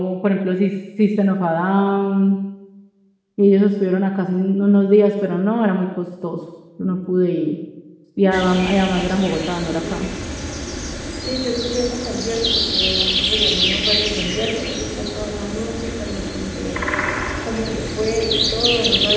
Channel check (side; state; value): both; identical; correlation 1.00